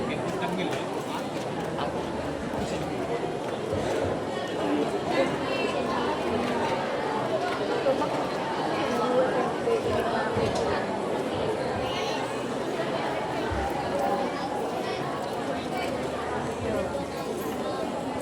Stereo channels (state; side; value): identical; both; correlation 1.00